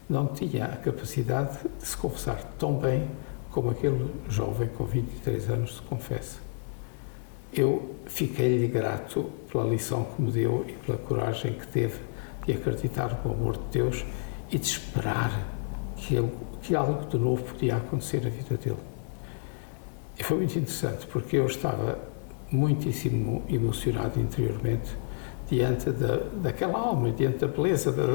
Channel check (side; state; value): right; silent; 58 dB below the other